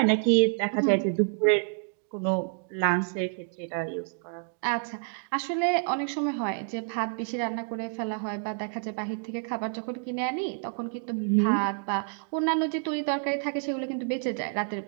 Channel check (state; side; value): silent; left; 59 dB below the other